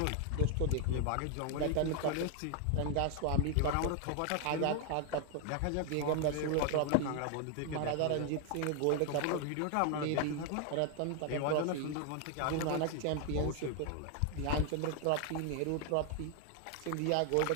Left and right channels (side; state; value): both; different; correlation 0.00